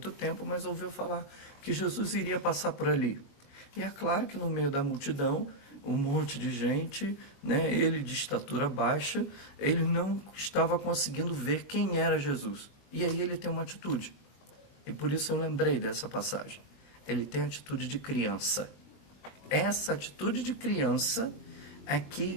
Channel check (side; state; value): right; late; 21 ms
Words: tempo, mas ouviu falar que Jesus iria passar por ali. E é claro que no meio da multidão, um monte de gente, né, ele de estatura baixa, ele não estava conseguindo ver quem era Jesus. E aí ele tem uma atitude. E por isso eu lembrei dessa passagem. Ele tem a atitude de criança. Essa atitude de criança é